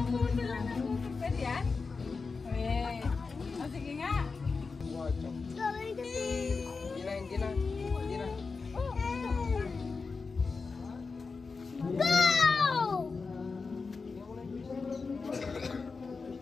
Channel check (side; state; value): right; quieter; 4.5 dB